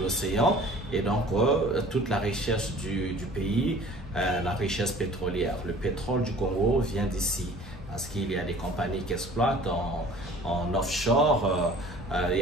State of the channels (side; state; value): both; normal; correlation 0.48